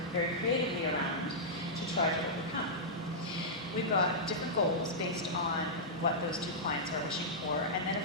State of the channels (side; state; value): both; normal; correlation -0.11